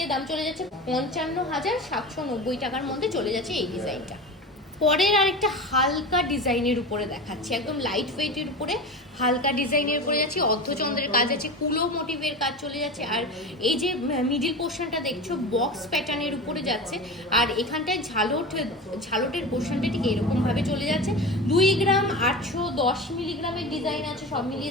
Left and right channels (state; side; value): normal; both; correlation 0.28